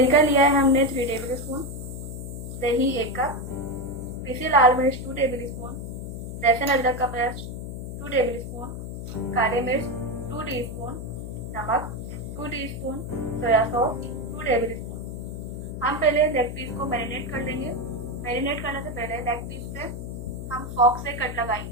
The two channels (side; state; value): left; noise; hum, 7 dB below the sound